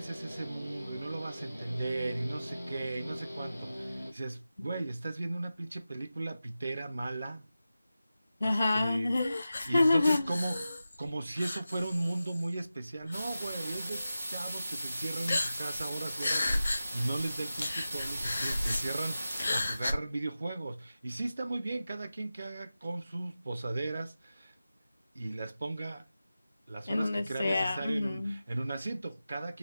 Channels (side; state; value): both; inverted; correlation -0.93